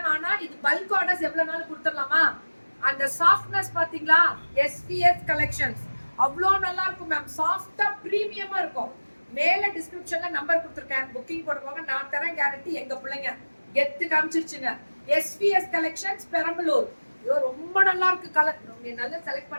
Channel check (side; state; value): both; inverted; correlation -1.00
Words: ஆனா இது பல்க் ஆர்டர்ஸ் எவ்வளவு நாள் கொடுத்துடலாமா? அந்த சாஃப்ட்னஸ் பாத்தீங்களா? எஸ்பிஎஸ் கலெக்ஷன்ஸ் அவ்வளோ நல்லா இருக்கும் மேம். சாஃப்டா பிரீமியமா இருக்கும். மேல டிஸ்கிரிப்ஷன்ல நம்பர் கொடுத்துருக்கேன், புக்கிங் போடுவாங்க. நான் தரேன் கேரண்டி. எங்க பிள்ளைங்க கெத்து காமிச்சிருச்சுங்க. SBS collections Perambalur. ஐயோ ரொம்ப நல்லா இருக்கு கலர். நீங்க நல்லா செலக்ட்